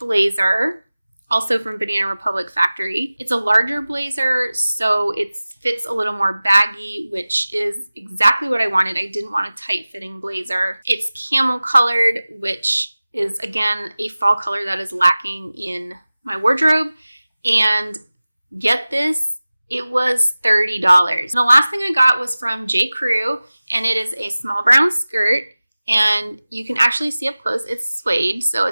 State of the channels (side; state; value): both; inverted; correlation -0.98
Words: also from Banana Republic Factory. It's a larger blazer, so it fits a little more baggy, which is exactly what I wanted. I didn't want a tight-fitting blazer. It's camel colored, which is, again, a fall color that is lacking in my wardrobe. And get this, it was $30. And the last thing I got was from J. Crew, and it is a small brown skirt. And you can actually see up close, it's suede, so